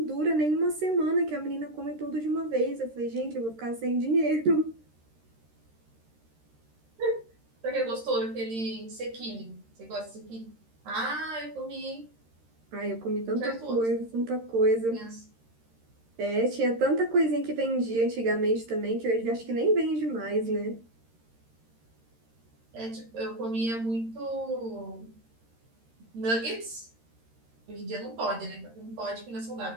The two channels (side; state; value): left; late; 13 ms